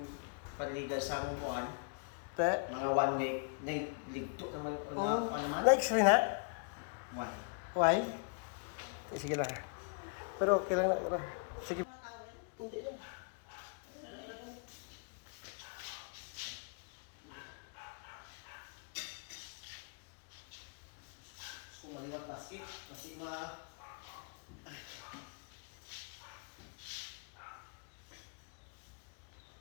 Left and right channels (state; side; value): quieter; right; 38.1 dB